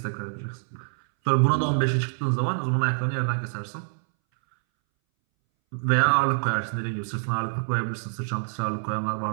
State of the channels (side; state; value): left; silent; 61 dB below the other